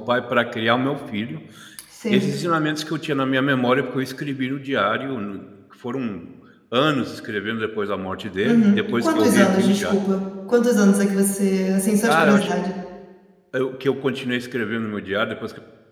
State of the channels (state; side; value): identical; both; correlation 1.00